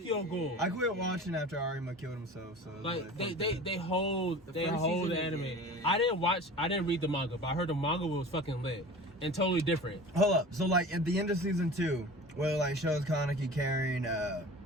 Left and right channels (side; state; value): both; normal; correlation 0.38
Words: Ghoul. I quit watching after Arima killed himself. So it was Like fuck they that. hold The they first hold the season is- anime. yeah. I didn't read the manga, but I heard the manga was fucking lit and totally different. Hold up. So like at the end of season 2, where like shows Kaneki carrying